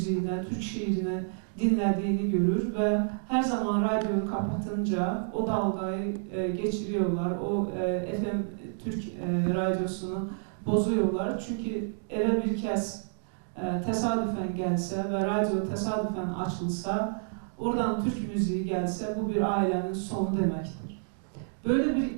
Türk şiirine dinlediğini görür ve her zaman radyoyu kapatınca o dalgayı geçiriyorlar. O FM Türk radyosunu bozuyorlar. Çünkü eve bir kez tesadüfen gelse ve radyo tesadüfen açılsa, oradan Türk müziği gelse bu bir ailenin sonu demektir. Böyle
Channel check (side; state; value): left; silent; digital silence